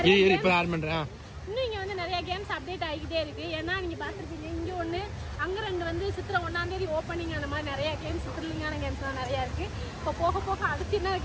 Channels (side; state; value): both; identical; correlation 1.00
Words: இன்னும் இங்கே வந்து நிறைய கேம்ஸ் அப்டேட் ஆகிக்கிட்டே இருக்கு. ஏன்னா நீங்கள் பார்த்துருப்பீங்க இங்கே ஒன்று அங்கே 2 வந்து சித்திரை 1ஆம் தேதி ஓப்பனிங். அந்த மாதிரி நிறைய கேம்ஸ் த்ரில்லிங்கான கேம்ஸ்லாம் நிறையா இருக்குது. இப்போ போக போக அடுத்து என்ன